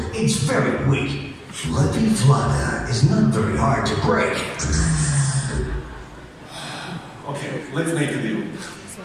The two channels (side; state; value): both; identical; correlation 1.00